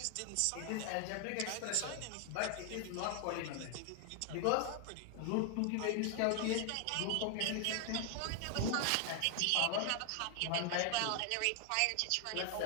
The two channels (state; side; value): different; both; correlation 0.00